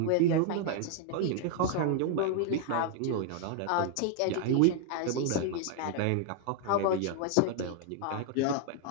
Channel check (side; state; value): both; different; correlation 0.00